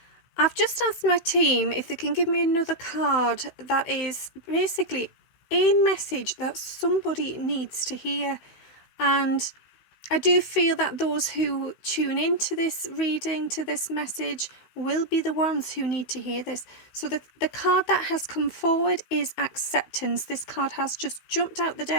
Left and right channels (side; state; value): right; late; 16 ms